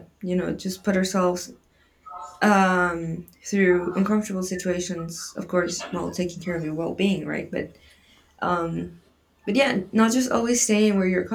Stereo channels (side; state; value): both; identical; correlation 1.00